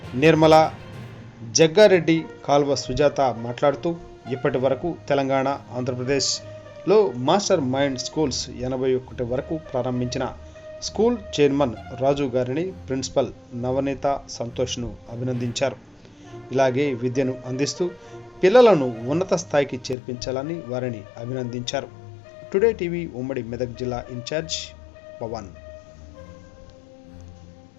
నిర్మలా జగ్గారెడ్డి, కాల్వ సుజాత మాట్లాడుతూ, ఇప్పటి వరకు తెలంగాణ, ఆంధ్రప్రదేశ్లో మాస్టర్ మైండ్ స్కూల్స్ 81 వరకు ప్రారంభించిన స్కూల్ చైర్మన్ రాజు గారిని ప్రిన్సిపల్ నవనీత సంతోష్ను అభినందించారు. ఇలాగే విద్యను అందిస్తూ పిల్లలను ఉన్నత స్థాయికి చేర్పించాలని వారిని అభినందించారు. టుడే టీవీ ఉమ్మడి మెదక్ జిల్లా ఇన్ఛార్జ్ పవన్.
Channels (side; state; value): right; drops out; at 20.0 s